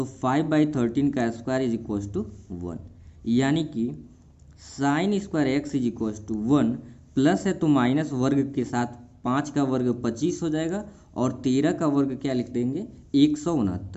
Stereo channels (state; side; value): identical; both; correlation 1.00